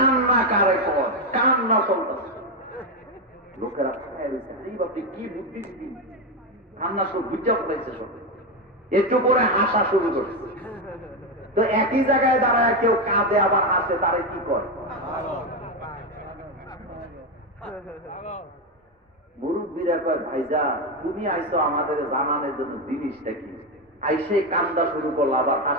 কারে কর, কান্না চলতেছে। লোকেরা আপনি কি বুদ্ধি দিন, কান্না শুরু বুঝা পড়াইছে সব, একটু পরে হাসা শুরু করছে। তো একই জায়গায় দাঁড়ায় কেউ কাঁদে আবার হাসে, তারে কি করে? মুরব্বীরা কয় ভাইজা তুমি আইসো আমাদের জানানোর জন্য জিনিসটা কি, আইসে কান্দা শুরু করলা আবার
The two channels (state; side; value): normal; both; correlation 0.09